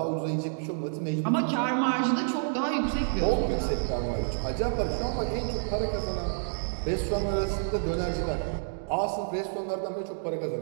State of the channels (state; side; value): silent; left; digital silence